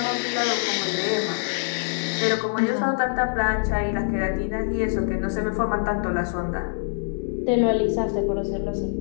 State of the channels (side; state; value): right; silent; 62 dB below the other